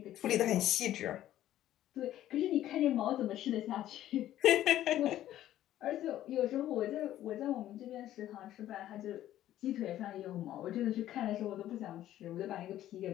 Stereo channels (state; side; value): quieter; right; 12.9 dB